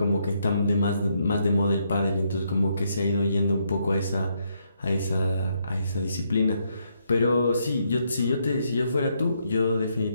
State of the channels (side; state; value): both; inverted; correlation -0.76